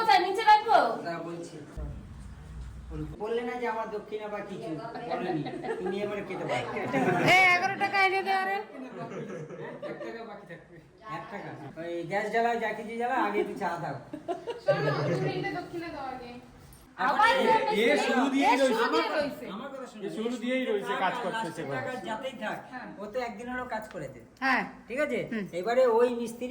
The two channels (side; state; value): both; identical; correlation 1.00